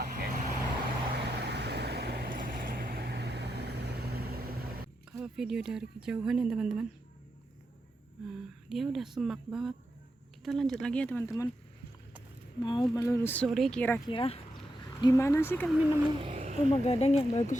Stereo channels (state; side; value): normal; both; correlation 0.85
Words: Kalau video dari kejauhan ya teman-teman, nah, dia udah semak banget. Kita lanjut lagi ya teman-teman, mau menelusuri kira-kira di mana sih kami nemu rumah gadang yang bagus